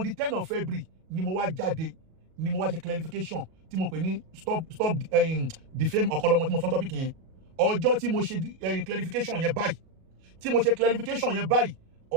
the 10th of February ni mo wá jáde ni mo wá ṣe clarification tí mo pè ní stop defame Ọ̀kanlọ́mọ tí mo sọ topic yẹn ọjọ́ tí mo ṣe clarification yẹn báyìí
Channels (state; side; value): late; left; 37 ms